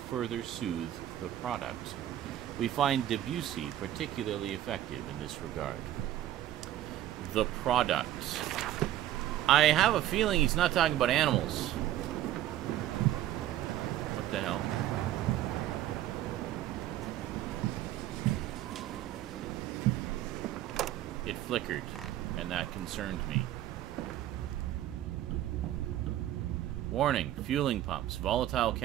soothe the product. We find Debussy particularly effective in this regard. The product. I have a feeling he's not talking about animals. What the hell? It flickered, and that concerned me. Warning, fueling pumps. Volatile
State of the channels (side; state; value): left; quieter; 12.7 dB